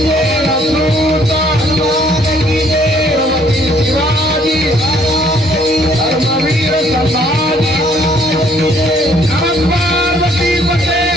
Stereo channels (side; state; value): both; normal; correlation 0.63